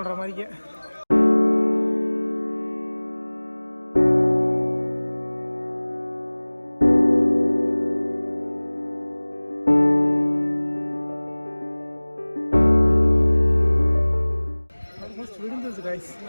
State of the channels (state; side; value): inverted; both; correlation -1.00